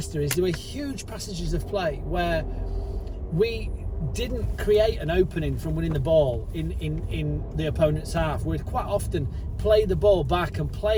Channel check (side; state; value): both; identical; correlation 1.00